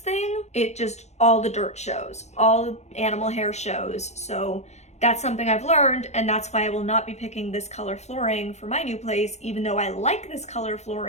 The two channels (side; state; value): right; late; 0.32 ms